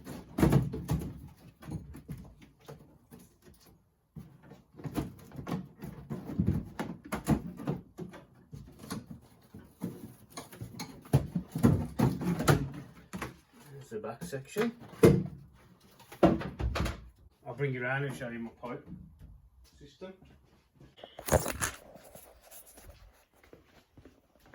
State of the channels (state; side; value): identical; both; correlation 1.00